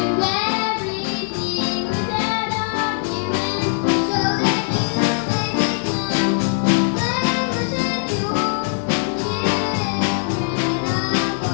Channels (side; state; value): right; silent; digital silence